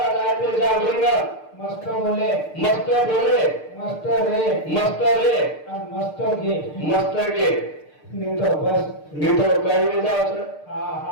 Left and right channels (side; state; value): right; late; 6.6 ms